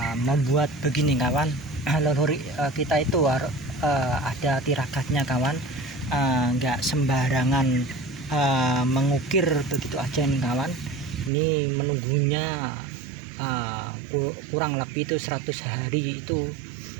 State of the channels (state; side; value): drops out; left; at 11.3 s